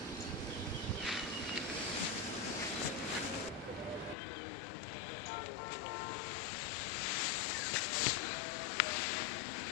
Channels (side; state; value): right; drops out; at 4.2 s